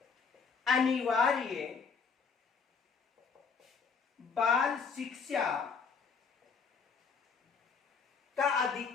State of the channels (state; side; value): quieter; right; 5.5 dB